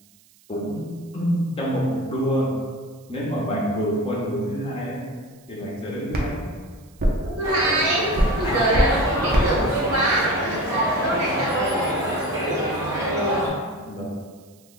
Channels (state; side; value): noise; right; hiss, 29 dB below the sound